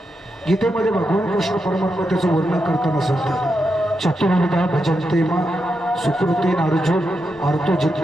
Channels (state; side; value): normal; both; correlation 0.85